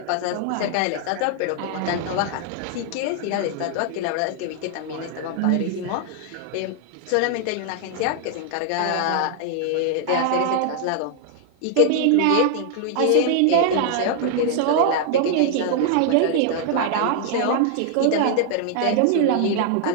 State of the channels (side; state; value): both; different; correlation 0.00